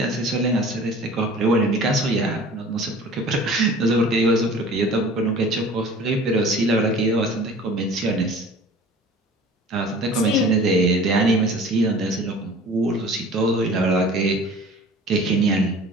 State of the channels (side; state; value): both; normal; correlation 0.44